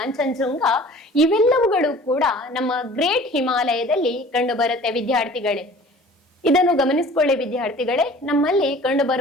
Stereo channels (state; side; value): normal; both; correlation 0.46